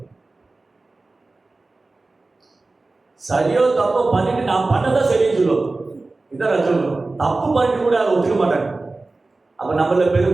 சரியோ தப்போ பண்ணிட்டு நான் பண்ணதான் சரின்னு சொல்லுவோம், இதான் ரஜோகுணம். தப்பு பண்ணிட்டு கூட அதை ஒத்துக்க மாட்டாங்க. அப்ப நம்மள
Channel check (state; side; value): quieter; left; 3.3 dB